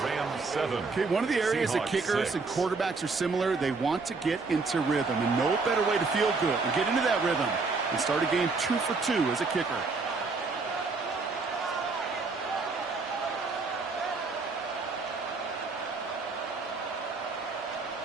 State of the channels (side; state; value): left; quieter; 4.2 dB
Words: Okay, one of the areas that kickers and quarterbacks are similar, they want to get into rhythm. And no better way to feel good and get into that rhythm and start a game 2 for 2 as a kicker.